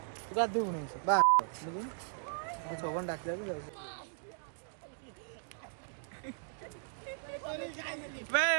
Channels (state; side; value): silent; left; digital silence